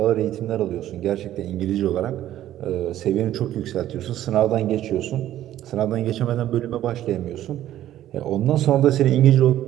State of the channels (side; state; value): left; quieter; 12.7 dB